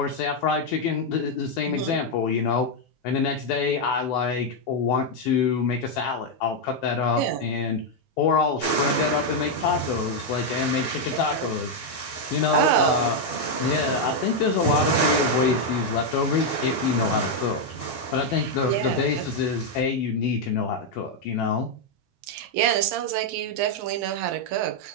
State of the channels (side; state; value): both; normal; correlation 0.01